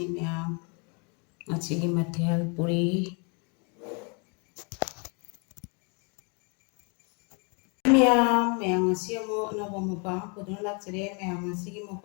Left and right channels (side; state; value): right; quieter; 34.4 dB